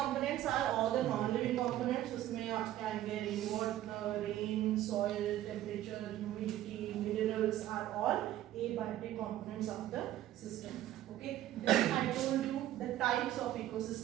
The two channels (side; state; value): left; quieter; 13.4 dB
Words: are all the non-living components. उसमें आपके आएंगे rain water, rain, soil, temperature, humidity, minerals are all abiotic components of the system. Okay, then I told you the types of